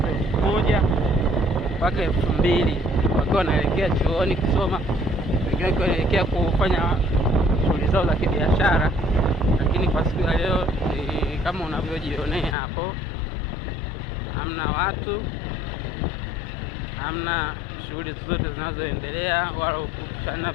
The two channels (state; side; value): drops out; right; at 12.6 s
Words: 1000 mpaka 2000 wakiwa wanaelekea chuoni kusoma, wengine wanaelekea kufanya shughuli zao za kibiashara. Lakini kwa siku ya leo kama unavyojionea hapo, hamna watu, hamna shughuli zote zinazoendelea, wala kushana